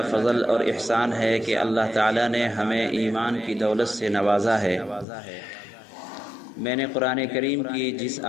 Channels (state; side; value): drops out; right; at 5.1 s